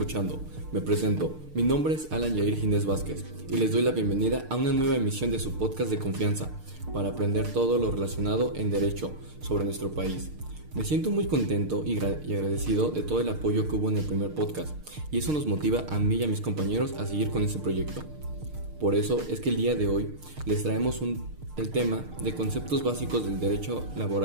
Me presento, mi nombre es Alan Yair Ginés Vázquez y les doy la bienvenida a una nueva emisión de su podcast de confianza para aprender todo lo relacionado en derecho sobre nuestro país. Me siento muy contento y agradecido de todo el apoyo que hubo en el primer podcast y eso nos motiva a mí y a mis compañeros a seguir con este proyecto. Por eso es que el día de hoy les traemos el tema de conceptos básicos del derecho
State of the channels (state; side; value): late; left; 6.6 ms